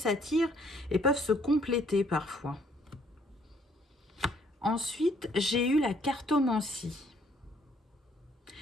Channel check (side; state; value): both; normal; correlation 0.64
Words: et peuvent se compléter parfois. Ensuite, j'ai eu la cartomancie.